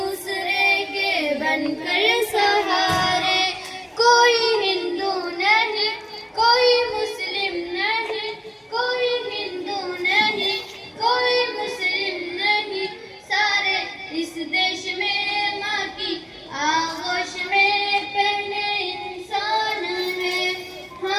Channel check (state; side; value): identical; both; correlation 1.00